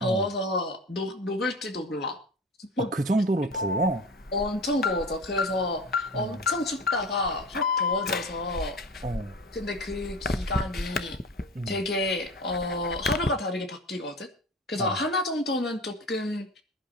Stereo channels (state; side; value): normal; both; correlation 0.32